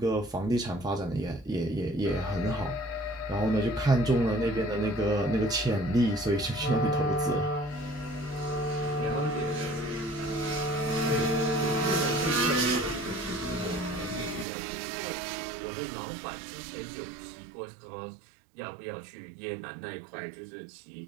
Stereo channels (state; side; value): drops out; left; at 14.5 s